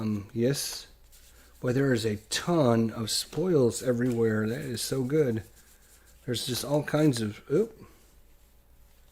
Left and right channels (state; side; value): identical; both; correlation 1.00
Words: Yes. Boy, there is a ton of spoils everywhere. That is so good. There's just all kinds of...